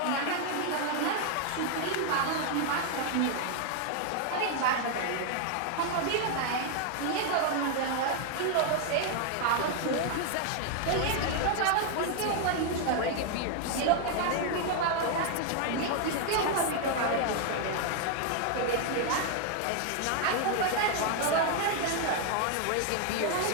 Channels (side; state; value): both; different; correlation 0.00